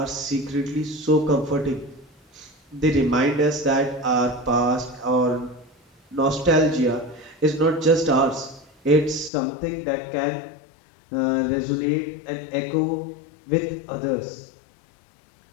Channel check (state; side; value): drops out; right; at 9.3 s